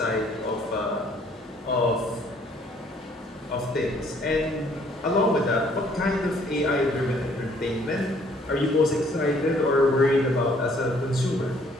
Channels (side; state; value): both; normal; correlation 0.62